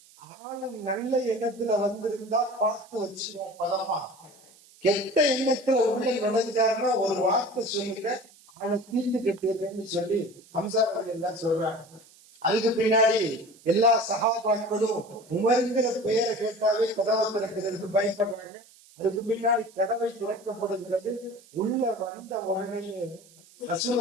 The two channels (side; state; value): right; noise; hiss, 26 dB below the sound